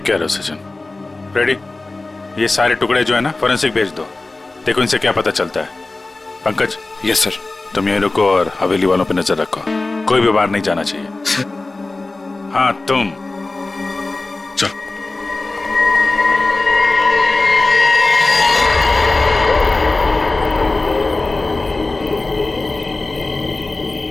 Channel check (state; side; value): quieter; right; 3.2 dB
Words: कह रहे हो सचिन। रेडी, ये सारे टुकड़े जो है ना फॉरेंसिक भेज दो, देखो इनसे क्या पता चलता है। पंकज। Yes sir. तुम यहीं रुको और हवेली वालों पे नजर रखो, कोई भी बाहर नहीं जाना चाहिए। हाँ तुम चलो।